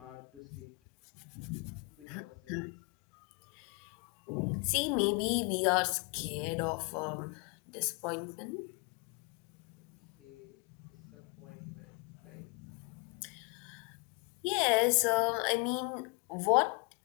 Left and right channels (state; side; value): quieter; right; 32.2 dB